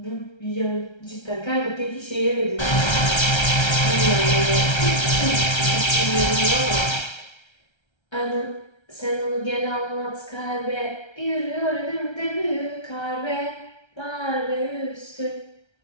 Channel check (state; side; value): late; right; 1.3 ms